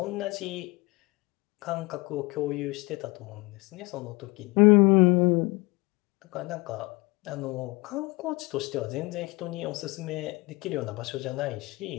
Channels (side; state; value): right; quieter; 24.4 dB